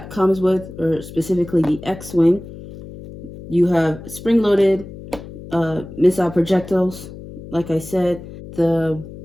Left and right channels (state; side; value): noise; left; hum, 14 dB below the sound